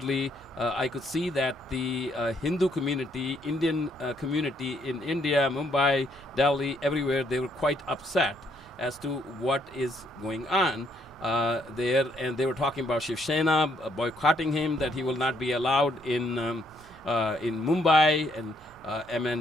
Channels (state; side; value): normal; both; correlation 0.70